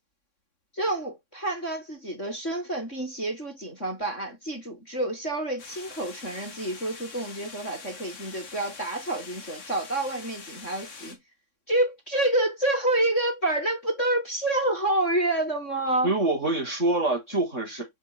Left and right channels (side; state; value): right; late; 3.6 ms